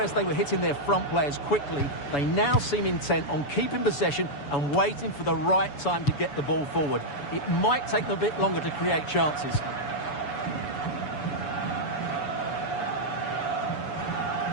they were hitting their front players quickly, they now seem intent on keeping possession and waiting for the right time to get the ball forward. It might take them a bit longer to create chances.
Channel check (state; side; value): late; right; 7.0 ms